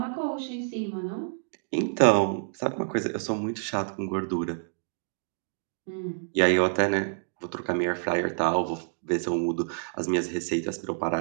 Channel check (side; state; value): left; silent; digital silence